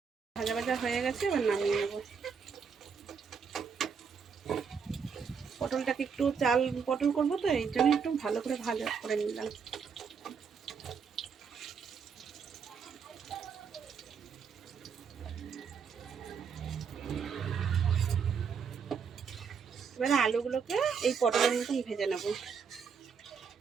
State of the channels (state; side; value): quieter; left; 6.2 dB